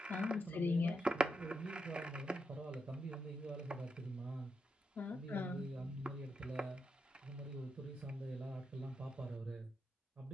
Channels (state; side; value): normal; both; correlation 0.83